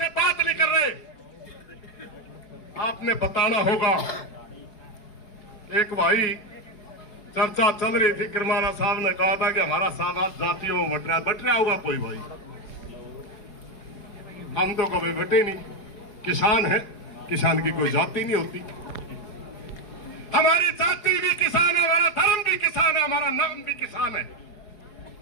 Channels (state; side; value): late; right; 4.8 ms